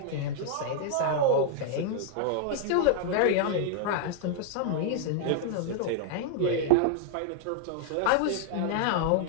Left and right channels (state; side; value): different; both; correlation 0.00